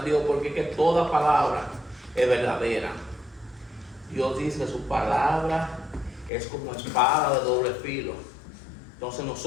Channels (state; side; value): drops out; right; at 6.3 s